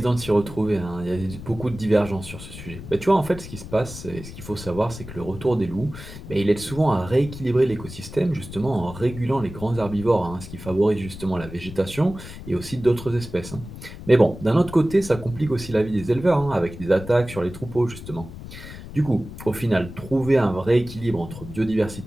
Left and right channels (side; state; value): left; noise; rumble, 13 dB below the sound